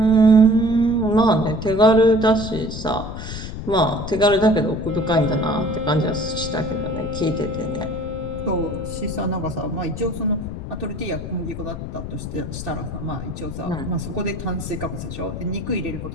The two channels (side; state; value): left; noise; rumble, 8 dB below the sound